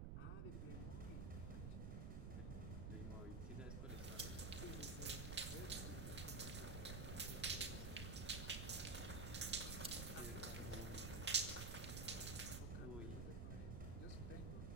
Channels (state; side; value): noise; right; rumble, 2 dB below the sound